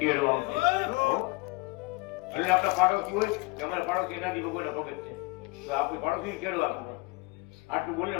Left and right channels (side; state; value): right; quieter; 25.1 dB